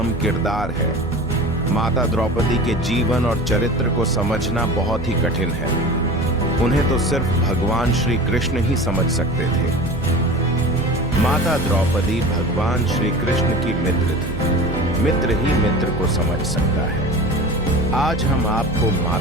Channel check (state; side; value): noise; right; hum, 9 dB below the sound